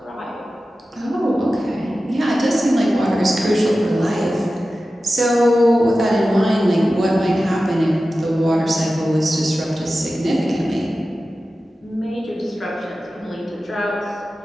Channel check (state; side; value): normal; both; correlation 0.94